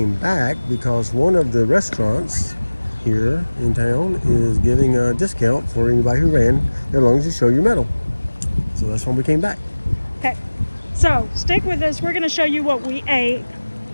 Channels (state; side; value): inverted; both; correlation -1.00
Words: back because one of the restaurants here in town is giving a discount for anybody who ran as long as you show your medal. So that's when we came back. Okay. So, stick with us. We're going to show you what we ate